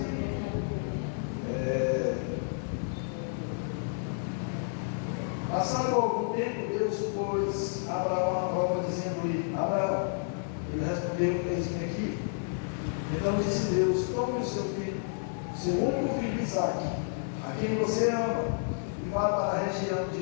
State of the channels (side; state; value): right; silent; digital silence